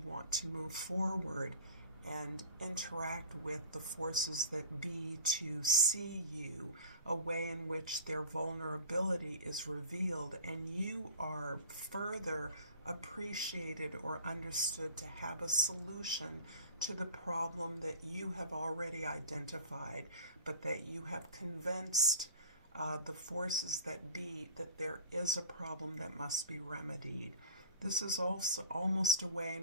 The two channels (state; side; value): inverted; both; correlation -0.41